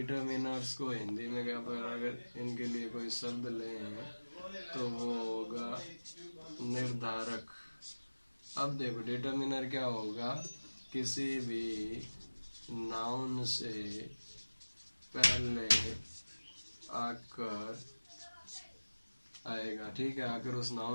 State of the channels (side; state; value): both; inverted; correlation -1.00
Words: को हिंदी में क्या पढ़ा, अगर इनके लिए कोई शब्द लें तो वो होगा निर्धारक। अब देखो डिटर्मिनर क्या होगा, किसी भी नाउन से पहले आकर आएगा, ठीक है। आकर उस